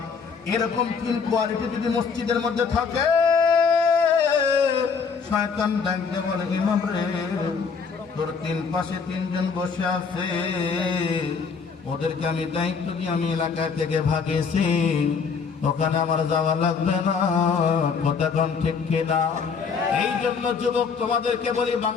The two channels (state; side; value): quieter; right; 5.6 dB